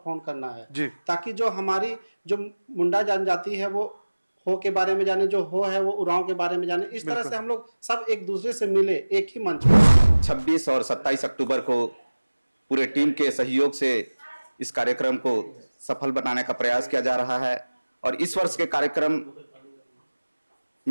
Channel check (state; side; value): inverted; both; correlation -1.00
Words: करना है जी, ताकि जो हमारी जो मुंडा जनजाति है वो हो के बारे में जाने, जो हो है वो उरांव के बारे में जाने। इस तरह से हम लोग सब एक दूसरे से मिले एक ही मंच पर। 26 और 27 अक्टूबर को पूरे टीम के सहयोग से इस कार्यक्रम को सफल बनाने का प्रयास किया जा रहा है और इस वर्ष के कार्यक्रम